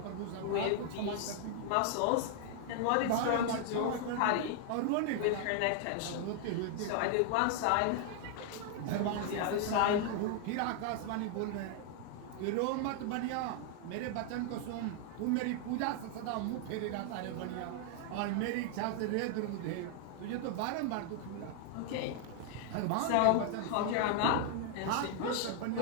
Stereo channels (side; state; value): both; different; correlation 0.00